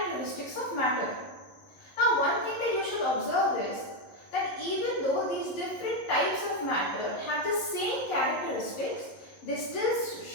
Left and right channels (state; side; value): late; right; 11 ms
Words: of matter. Now, one thing that you should observe is that even though these different types of matter have the same characteristics, they still